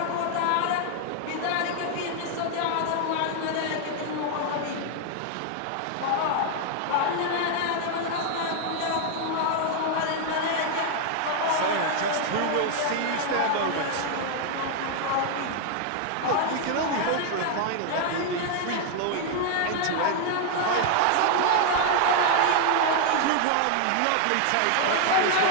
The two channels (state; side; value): different; both; correlation 0.00